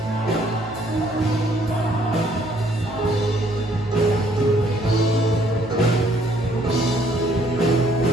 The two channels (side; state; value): both; normal; correlation 0.65